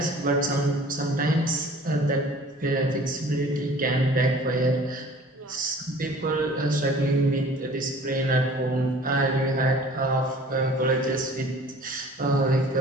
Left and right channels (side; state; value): both; normal; correlation 0.48